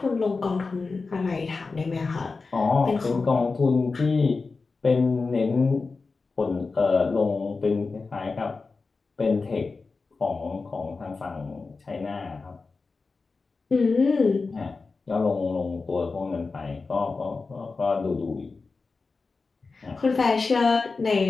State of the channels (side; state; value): right; quieter; 4.1 dB